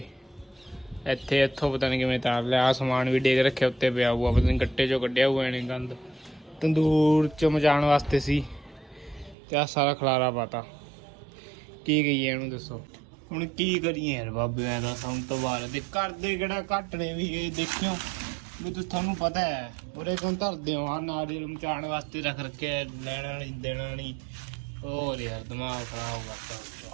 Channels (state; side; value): drops out; left; at 9.3 s